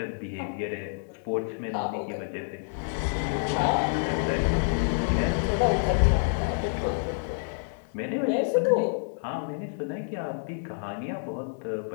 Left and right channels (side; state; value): right; silent; digital silence